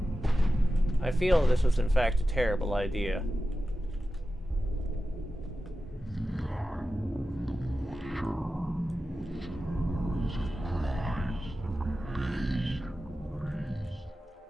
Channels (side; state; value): both; normal; correlation 0.93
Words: I feel this was in fact a terrible idea.